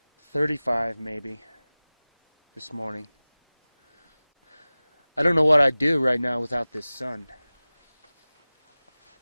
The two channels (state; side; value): inverted; both; correlation -0.98